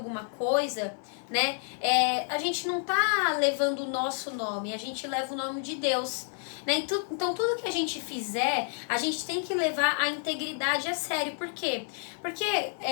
coisa, né? A gente não tá levando o nosso nome, a gente leva o nome de Deus, né? Então, tudo que a gente fizer, a gente tem que levar a integridade a sério. Por quê? Porque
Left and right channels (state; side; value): silent; right; 58 dB below the other